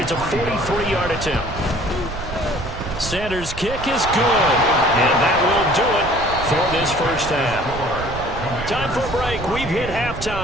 it's a 43-yard attempt. Sanders' kick is good. And that will do it for this first half. Time for a break. We've hit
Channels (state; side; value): noise; right; rumble, 10 dB below the sound